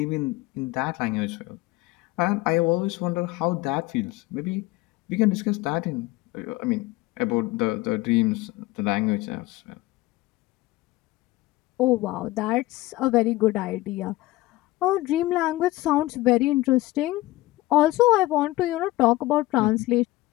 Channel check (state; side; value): quieter; right; 18.6 dB